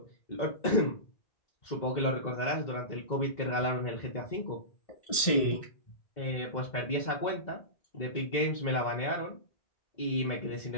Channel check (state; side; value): late; right; 2.0 ms